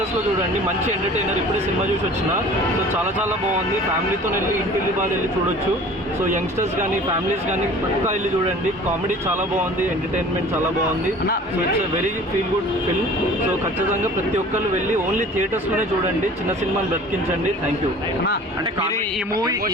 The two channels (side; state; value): both; normal; correlation 0.45